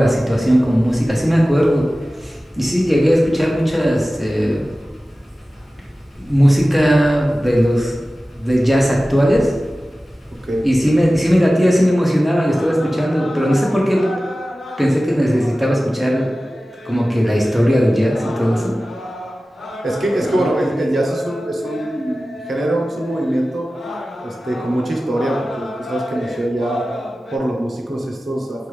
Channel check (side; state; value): both; normal; correlation 0.96